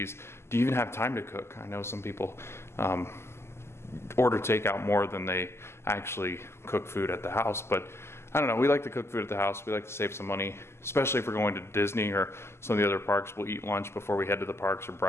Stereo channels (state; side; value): late; right; 0.12 ms